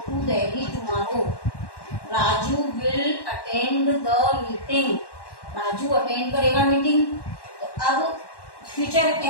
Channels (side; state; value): right; late; 1.1 ms